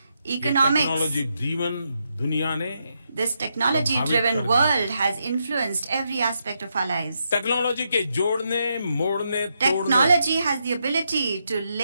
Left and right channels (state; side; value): inverted; both; correlation -0.82